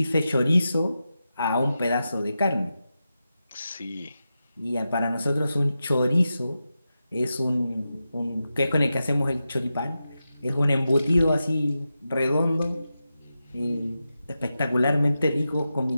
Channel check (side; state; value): both; inverted; correlation -0.90